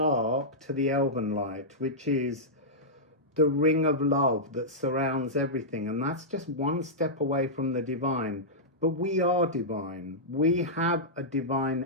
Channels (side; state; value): both; normal; correlation -0.12